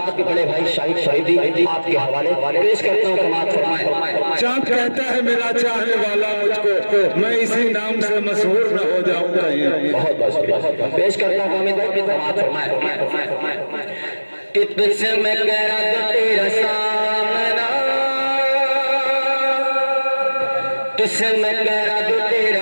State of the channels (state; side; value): inverted; both; correlation -1.00